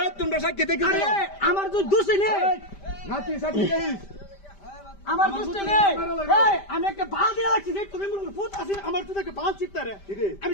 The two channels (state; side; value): late; right; 5.1 ms